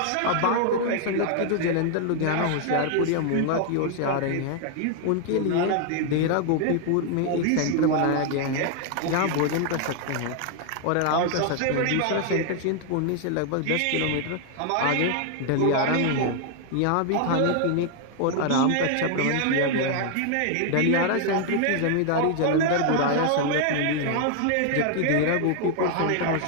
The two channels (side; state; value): both; different; correlation 0.00